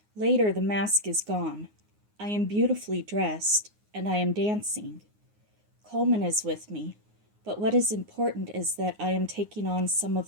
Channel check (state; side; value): late; left; 9.6 ms